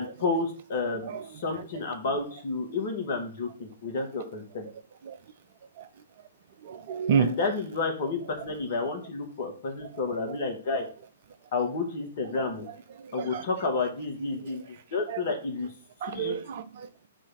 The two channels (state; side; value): inverted; both; correlation -0.42